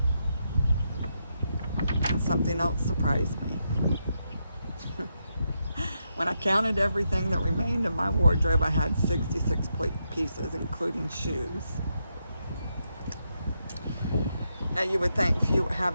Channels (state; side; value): inverted; both; correlation -0.82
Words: And something else surprised me. When I counted everything that remained in my wardrobe, I had 66 pieces, including shoes. Now you would think